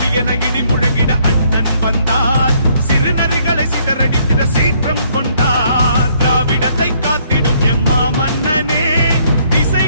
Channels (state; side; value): inverted; both; correlation -0.67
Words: என இடி முழங்கிட அண்ணன் வந்தார், சிறு நரிகளை சிதறடித்திட சீற்றம் கொண்டார், திராவிடத்தை காத்திடும் எம்மா மன்னனே,